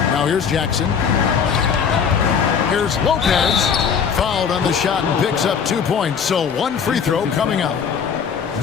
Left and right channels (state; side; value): quieter; right; 6.8 dB